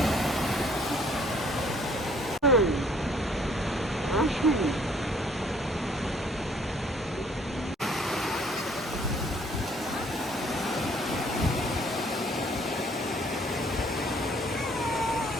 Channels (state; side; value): normal; both; correlation 0.60